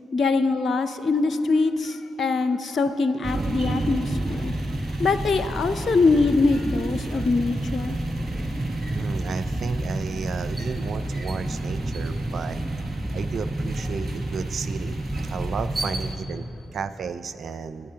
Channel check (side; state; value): both; normal; correlation 0.86